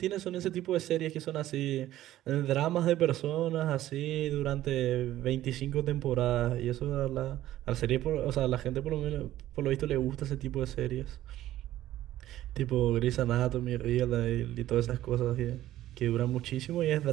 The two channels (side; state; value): left; quieter; 14.0 dB